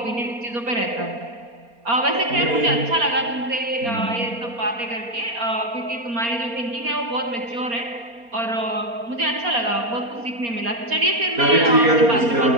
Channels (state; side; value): late; left; 4.3 ms